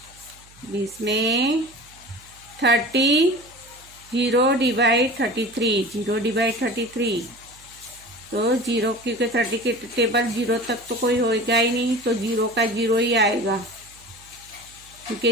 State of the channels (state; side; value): noise; right; hum, 26 dB below the sound